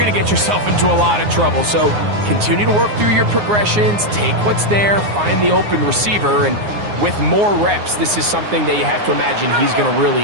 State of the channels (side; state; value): left; late; 9.6 ms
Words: to get yourself into a lot of trouble. So continue to work through your progressions, take what's there, find the open receiver, and with more reps, this is something that you have to imagine he's going to